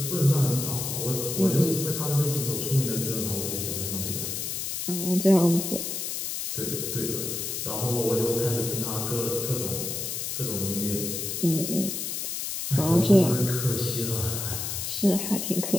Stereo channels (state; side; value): noise; left; hiss, 3 dB below the sound